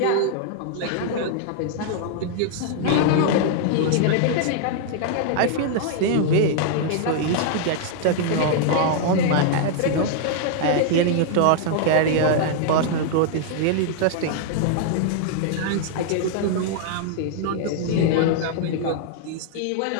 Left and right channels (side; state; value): both; different; correlation -0.01